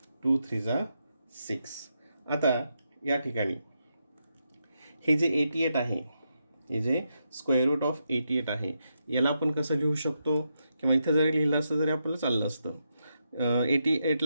2 3 6. आता या ठिकाणी हे जे 88 आहे, हे जे स्क्वेअर रूट ऑफ 88 आहे, याला आपण कसं लिहू शकतो, किंवा इथं जरी लिहिलं असतं तरी आपल्याला चाललं असतं.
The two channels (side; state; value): both; inverted; correlation -0.83